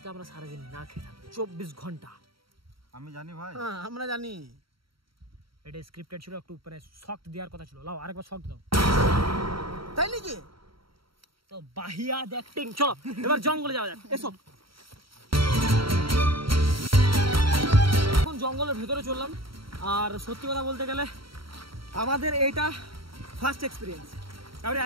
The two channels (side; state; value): left; late; 0.74 ms